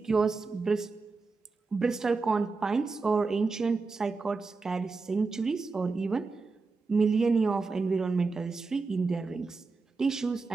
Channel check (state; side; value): quieter; left; 4.1 dB